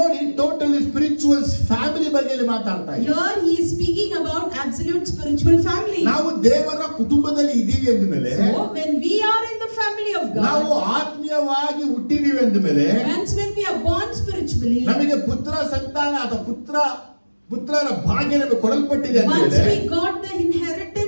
ಟೋಟಲಿ ಸ್ಪಿರಿಚುವಲ್ಸ್ ಫ್ಯಾಮಿಲಿ ಬಗ್ಗೆ ಮಾತಾಡ್ತಾ ಇದ್ದಾರೆ. Here he is speaking about absolute spiritual family. ನಾವು ದೇವರ ಕುಟುಂಬದಲ್ಲಿ ಇದ್ದೀವಿ ಅಂದಮೇಲೆ, So when we are in the family of ನಾವು God, ಆತ್ಮೀಯವಾಗಿ ಹುಟ್ಟಿದೀವಿ ಅಂದಮೇಲೆ, once when we are born spiritually, ನಮಗೆ ಪುತ್ರ ಸಂತಾನ ಅಥವಾ ಪುತ್ರರ ಭಾಗ್ಯ ನಮಗೆ ಕೊಡಲ್ಪಟ್ಟಿದೆ once ಅಂದಮೇಲೆ, we got the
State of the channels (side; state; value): both; inverted; correlation -1.00